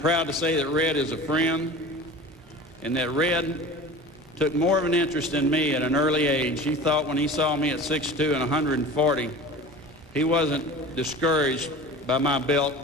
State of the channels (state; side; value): normal; both; correlation 0.37